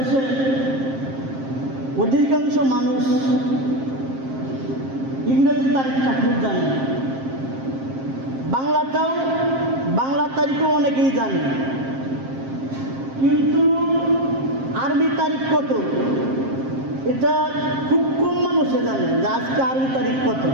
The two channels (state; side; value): late; left; 7.5 ms